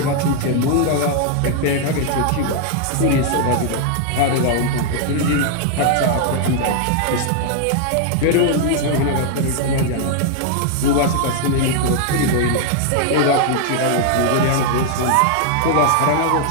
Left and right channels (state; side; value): different; both; correlation 0.00